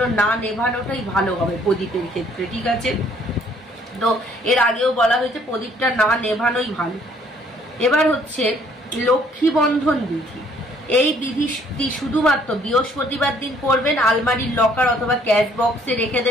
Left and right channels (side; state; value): both; normal; correlation 0.62